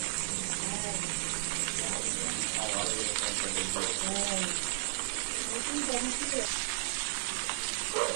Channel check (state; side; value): silent; left; digital silence